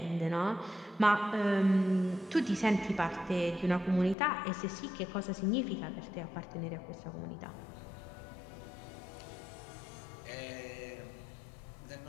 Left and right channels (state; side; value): drops out; right; at 4.2 s